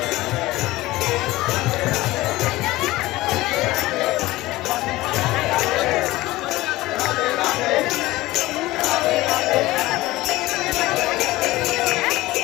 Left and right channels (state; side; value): quieter; right; 18.4 dB